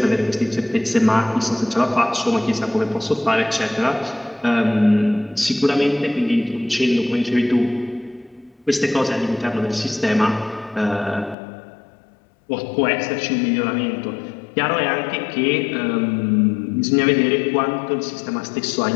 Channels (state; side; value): drops out; right; at 11.4 s